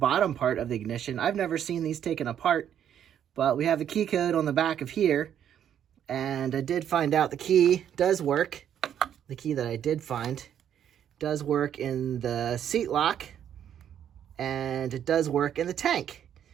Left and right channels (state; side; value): quieter; left; 9.6 dB